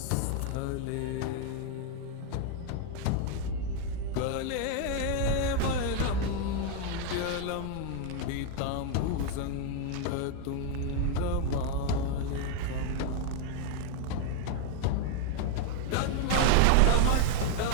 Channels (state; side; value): different; both; correlation 0.00